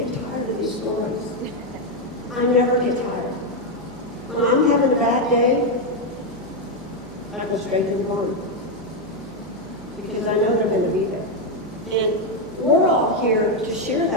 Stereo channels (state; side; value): noise; right; hum, 21 dB below the sound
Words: tired of these stories. I never get tired. When I'm having a bad day, I go straight to the barn because I know they're going to be there. And we're all here to share